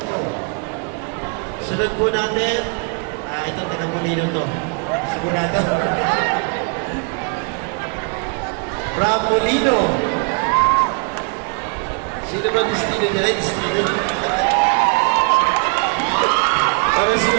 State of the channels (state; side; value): quieter; left; 34.3 dB